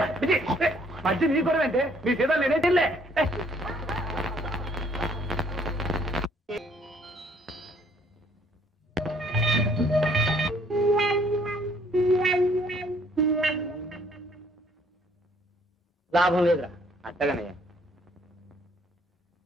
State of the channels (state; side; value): normal; both; correlation 0.63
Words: మధ్య నీ కూడా అంటే మీ సీతాలు నేనే తిల్లే. లాభం లేదురా. అట్టగానయ్యా.